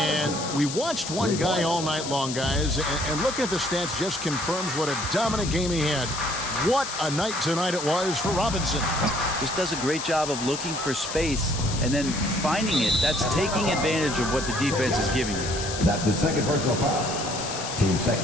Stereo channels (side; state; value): left; noise; hiss, 7 dB below the sound